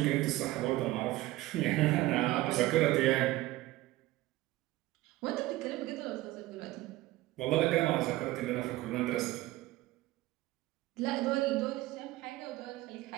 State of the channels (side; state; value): left; quieter; 17.4 dB